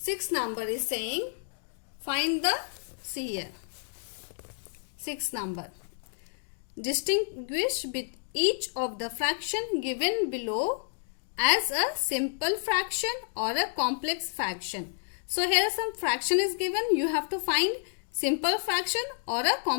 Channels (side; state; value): right; silent; digital silence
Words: number is saying find the, see here, 6 number. Distinguish each of the fraction given below as a simple fraction or a complex fraction. So, here some fraction is given. You have to find simple fraction or a